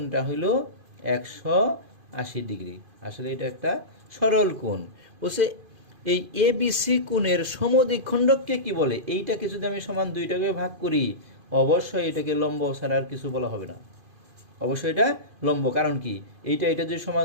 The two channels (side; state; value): left; late; 2.5 ms